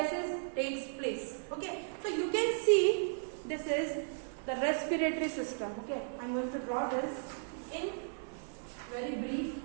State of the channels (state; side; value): silent; left; digital silence